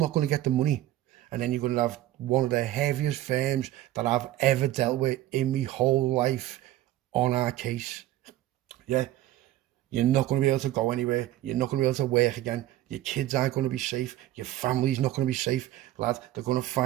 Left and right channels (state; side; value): quieter; left; 14.7 dB